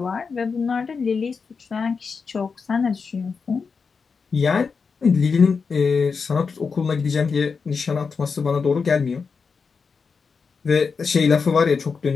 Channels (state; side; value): quieter; right; 5.2 dB